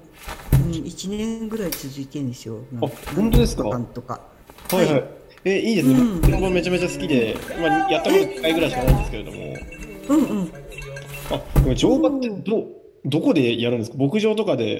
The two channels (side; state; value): both; identical; correlation 1.00